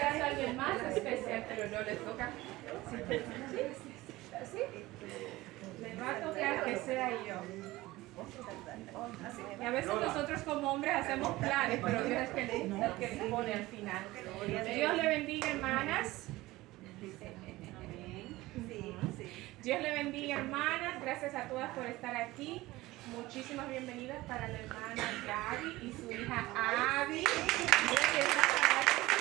a alguien más especial, pero no les toca. ¿Sí? Les va a tocar que sea yo. Y a veces nosotros como hombres hacemos planes, pero Dios es el que dispone al final. Dios le bendiga, hermanas. Dios le bendiga, hermanas. Gracias a todas por estar aquí. Muchísimas bienvenidas para la hermana Gaby y su hija Abby.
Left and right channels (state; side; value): quieter; left; 18.7 dB